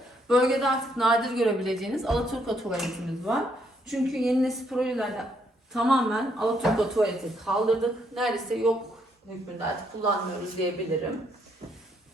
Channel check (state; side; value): normal; both; correlation 0.72